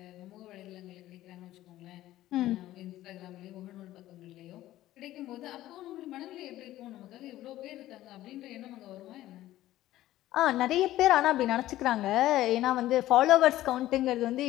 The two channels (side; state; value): right; quieter; 14.8 dB